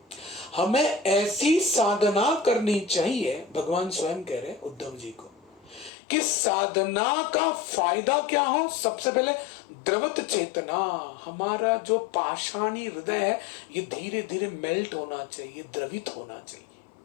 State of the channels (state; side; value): drops out; right; at 5.9 s